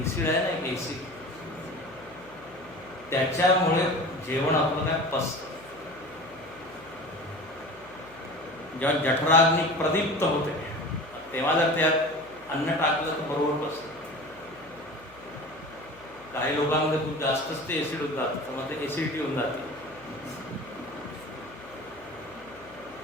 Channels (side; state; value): left; noise; hum, 24 dB below the sound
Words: आहे ना, एक एसिड, त्याच्यामुळे जेवण आपलं काय पचतं. जेव्हा जठराग्नी प्रदीप्त होते तेव्हा जर त्यात अन्न टाकलं तर बरोबर पचतं. काही लोकांमध्ये खूप जास्तच ते एसिड होत जातं, तर मग ते एसिडिटी होऊन जाते.